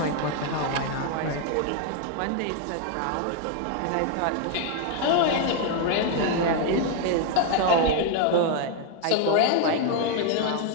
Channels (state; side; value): different; both; correlation 0.00